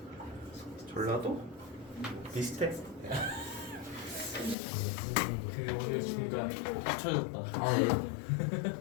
전라도 비슷해. 그 오늘 중간 합쳐졌다.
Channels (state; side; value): drops out; right; at 4.5 s